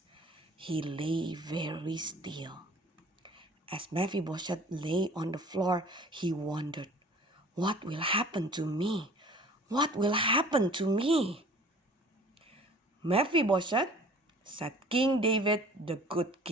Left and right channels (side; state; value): both; normal; correlation 0.48